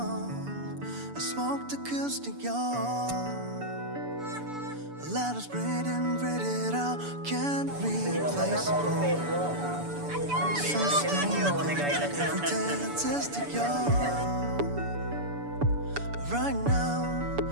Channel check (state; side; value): late; left; 7.0 ms